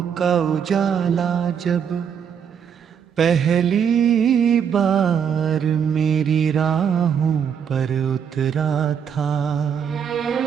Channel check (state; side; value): quieter; left; 7.7 dB